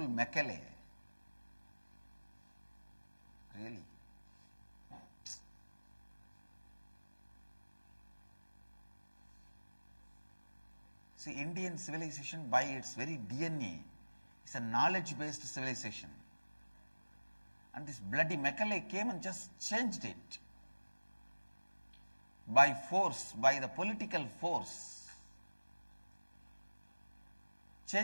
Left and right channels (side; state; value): both; inverted; correlation -1.00